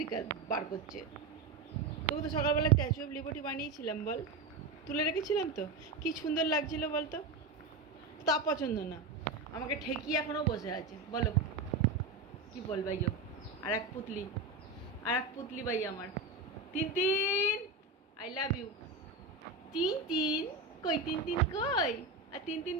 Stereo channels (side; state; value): left; quieter; 3.8 dB